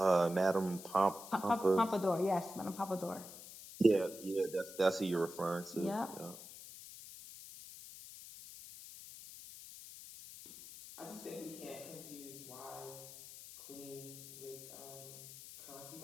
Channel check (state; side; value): noise; left; hiss, 14 dB below the sound